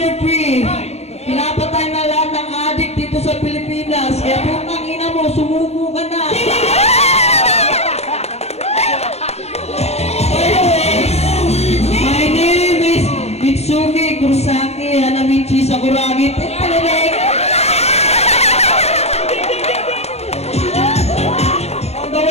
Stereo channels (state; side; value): late; right; 0.31 ms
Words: 3. Pinapatay na lahat ng addict dito sa Pilipinas. Kaya putangina mo, sumuko ka na. Anyways, my name is Mitsuki Kurosaki Hanamichi Sakuragi. On the